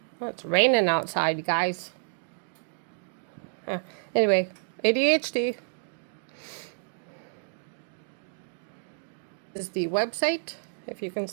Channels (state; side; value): silent; left; digital silence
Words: Well, it's raining outside, guys. Anyway, ADHD is the website, if you can